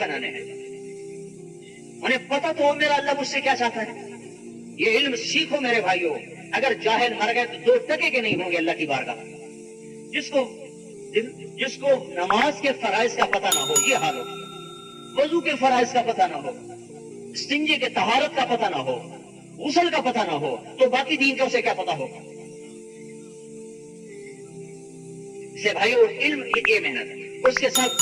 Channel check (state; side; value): identical; both; correlation 1.00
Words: ہیں. انہیں پتہ تو ہو میرا اللہ مجھ سے کیا چاہتا ہے. یہ علم سیکھو میرے بھائیوں. اگر جاہل مر گئے تو 2 ٹکے کے نہیں ہوں گے اللہ کی بارگاہ. جس کو نماز کے فرائض کا پتہ نہ ہو، یہ حال ہو، وضو کے فرائض کا پتہ نہ ہو، استنجے کے طہارت کا پتہ نہ ہو، غسل کا پتہ نہ ہو، تو باقی دین کا اسے کیا پتہ ہوگا. سے بھائیو علم یہ محنت ہے، اس کے ساتھ